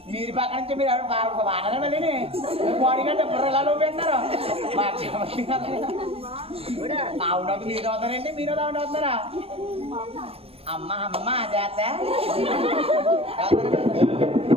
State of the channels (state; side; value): late; left; 0.28 ms